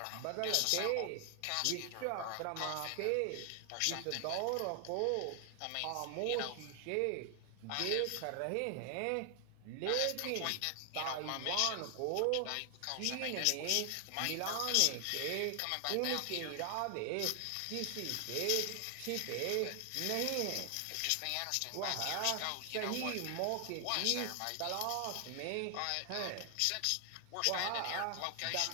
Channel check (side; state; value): both; different; correlation 0.00